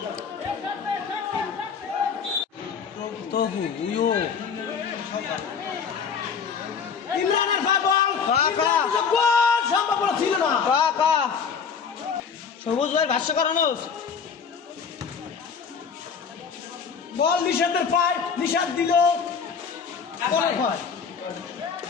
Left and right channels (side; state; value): right; quieter; 6.3 dB